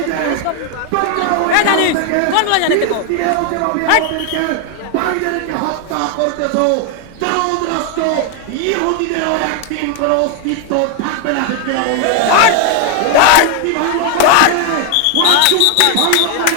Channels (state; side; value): different; both; correlation 0.00